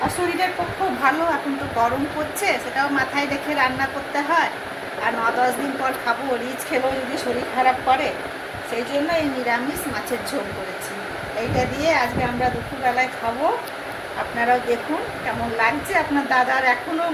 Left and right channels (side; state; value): both; identical; correlation 1.00